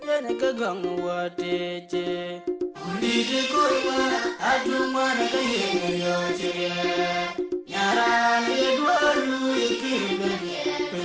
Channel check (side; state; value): both; identical; correlation 1.00